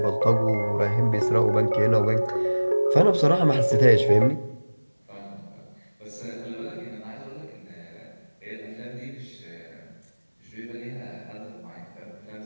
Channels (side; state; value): both; inverted; correlation -1.00